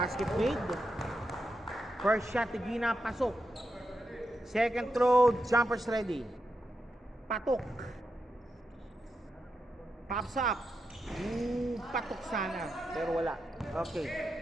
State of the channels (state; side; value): normal; both; correlation 0.86